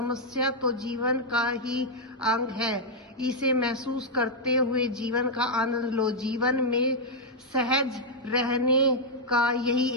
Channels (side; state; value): both; normal; correlation -0.03